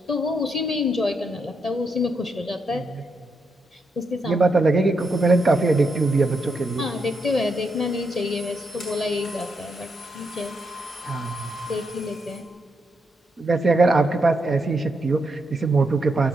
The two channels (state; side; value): normal; both; correlation 0.81